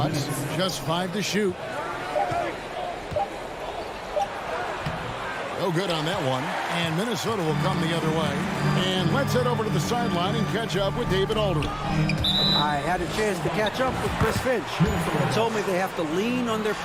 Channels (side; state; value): both; identical; correlation 1.00